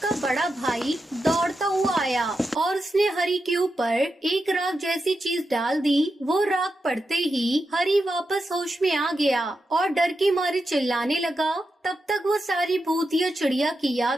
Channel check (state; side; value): normal; both; correlation 0.88